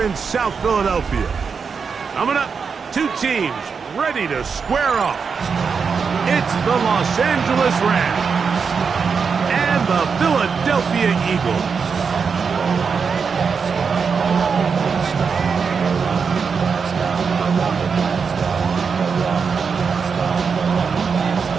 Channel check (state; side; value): quieter; left; 5.7 dB